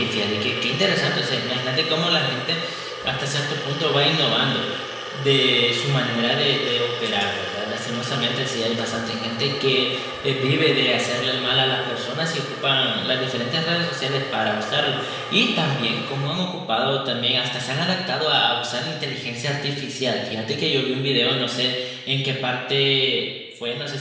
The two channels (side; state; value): both; identical; correlation 1.00